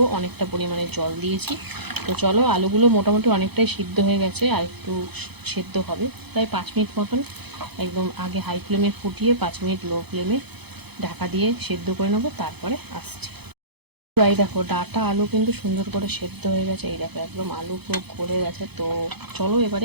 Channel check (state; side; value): late; left; 0.98 ms